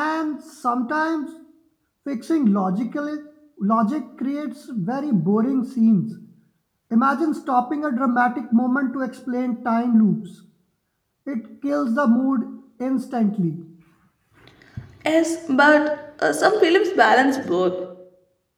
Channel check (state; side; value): identical; both; correlation 1.00